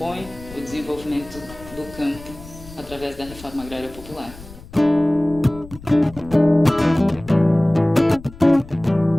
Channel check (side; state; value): left; noise; rumble, 18 dB below the sound